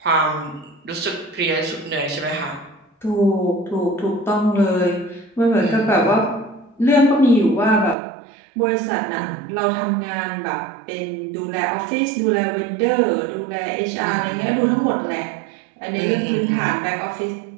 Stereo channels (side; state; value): left; drops out; at 8.0 s